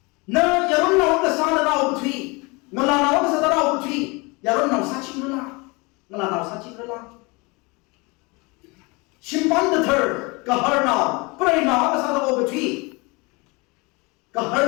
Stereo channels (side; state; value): right; quieter; 27.1 dB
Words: nó giờ nó cái sao đó ô cái thủy, nó là nó cái sao đó ô cái thủy, giờ nó sao chính rồi là, nó là nó sao chính rồi là, simpan the third, cái hở nào, cái nào cái sao đó ô cái thủy, cái